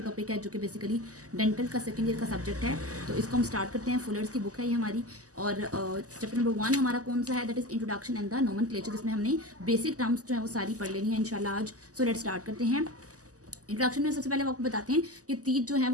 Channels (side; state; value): left; late; 0.66 ms